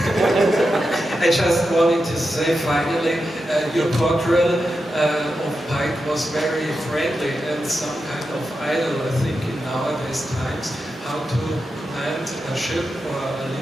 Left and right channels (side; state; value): both; normal; correlation 0.89